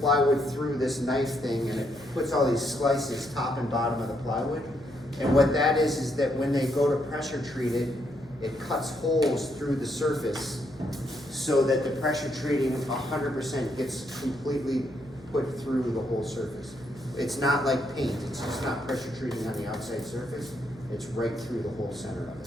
through this knife thing, and it puts all these slices top and bottom of the plywood. And what that is that when they go to pressure treat it, it cuts holes through the surface so that the pressure treating 100% gets completely put through the whole surface. It's not like paint, it's just not pressure treating on the outside surface, it's right through the whole center of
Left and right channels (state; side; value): noise; left; hum, 23 dB below the sound